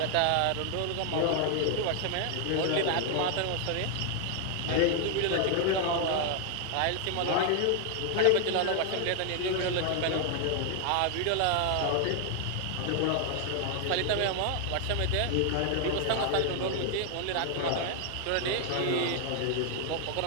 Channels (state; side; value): different; both; correlation 0.00